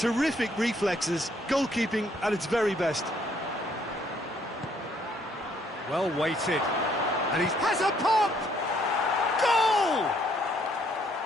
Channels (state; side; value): normal; both; correlation 0.67